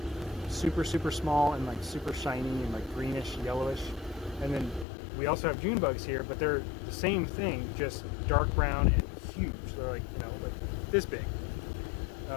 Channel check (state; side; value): drops out; right; at 4.9 s